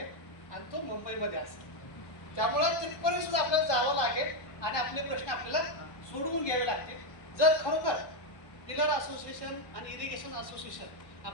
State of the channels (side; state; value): right; late; 1.2 ms